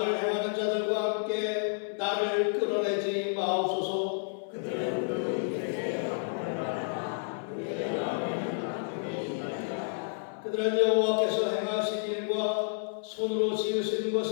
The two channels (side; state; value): right; silent; 58 dB below the other